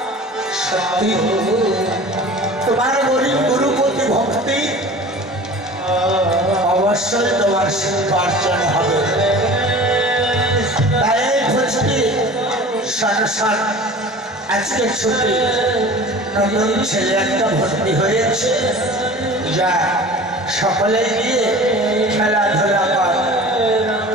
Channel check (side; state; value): both; normal; correlation 0.40